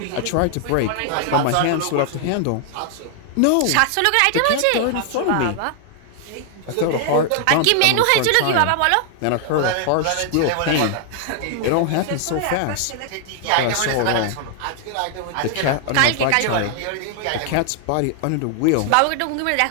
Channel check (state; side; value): different; both; correlation 0.00